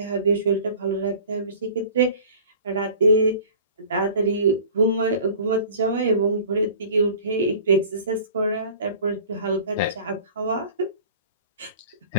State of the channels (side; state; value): both; inverted; correlation -0.44